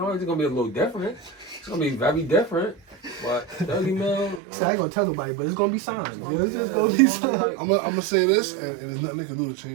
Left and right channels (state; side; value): drops out; left; at 4.4 s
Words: it's gonna be a little different. It's gonna be very different. But 30 mil. See, I ain't gonna tell nobody, but it's gonna be signed. gonna It's be- just yeah, gonna it's be gonna be signed. like- I'm gonna say this, and there's nothing they can do to